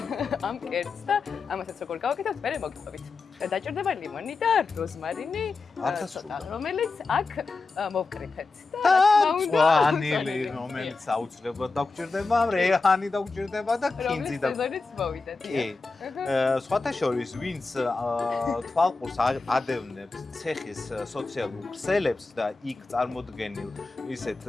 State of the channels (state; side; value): quieter; right; 3.9 dB